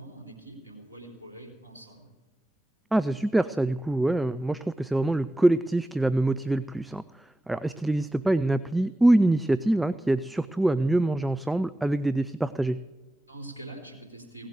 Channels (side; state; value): both; normal; correlation 0.95